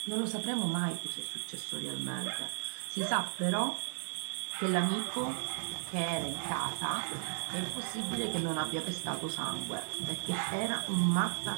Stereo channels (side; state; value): left; silent; digital silence